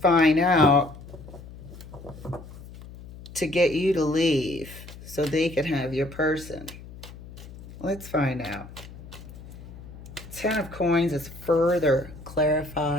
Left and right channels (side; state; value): left; noise; hum, 16 dB below the sound